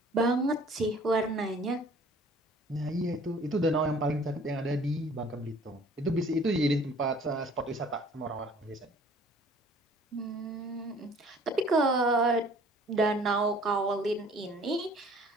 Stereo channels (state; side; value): normal; both; correlation 0.53